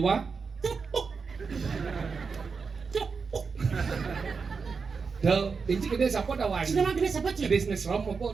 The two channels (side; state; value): left; quieter; 5.2 dB